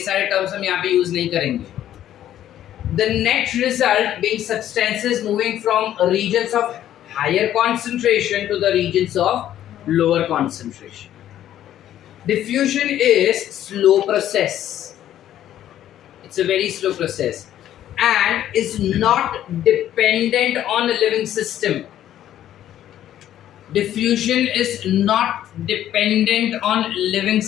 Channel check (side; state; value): right; quieter; 11.8 dB